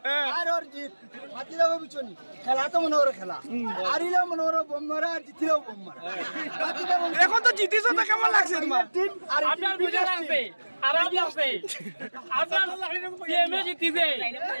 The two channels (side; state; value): both; inverted; correlation -1.00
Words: আর ওর জিত মাতি দেবো বিচনি খেলা তো মনে ওর খেলা হারিলেও মনে ওর বোম্মারা আর জিতিলেও বোম্মারা এখন তো জিতিস তো কেমন লাগছে তোমার টিম আর আপনার বুঝা লাগবে আরাম লাগবে আপনার সিএমএ জিতিছে